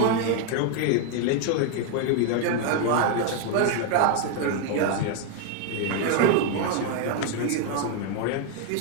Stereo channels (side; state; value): both; different; correlation 0.00